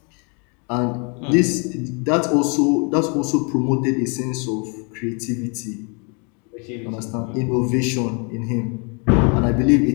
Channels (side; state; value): right; quieter; 35.4 dB